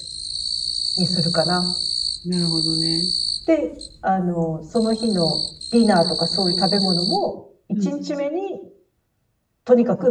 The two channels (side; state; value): both; identical; correlation 1.00